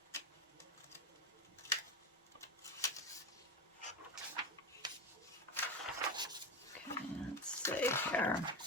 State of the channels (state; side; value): normal; both; correlation 0.20